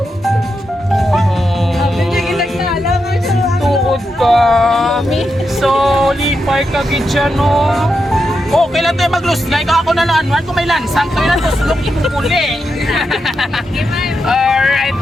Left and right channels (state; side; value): normal; both; correlation 0.86